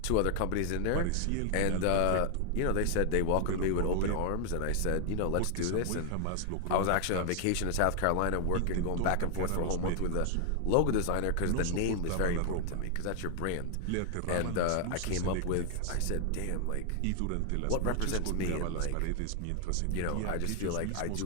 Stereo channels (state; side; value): different; both; correlation 0.00